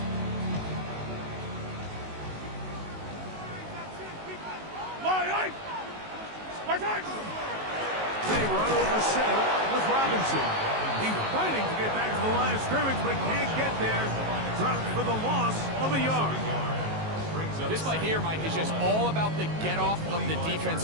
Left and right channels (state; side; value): late; left; 19 ms